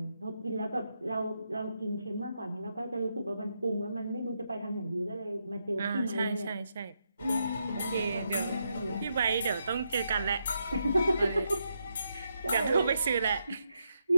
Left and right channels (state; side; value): inverted; both; correlation -0.82